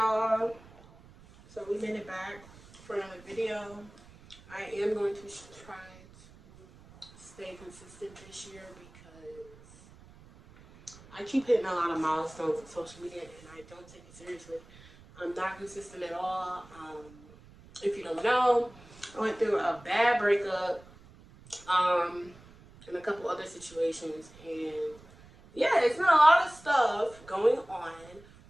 y'all. So we made it back for another video. I am going to try to stay consistent this year because I keep hitting a lot of milestones on social media and I don't take it seriously. I'm not consistent at all. If you don't know, I went through a bad breakup and a couple other situations, and yeah, it's been a lot of stuff going on,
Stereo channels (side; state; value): right; noise; rumble, 23 dB below the sound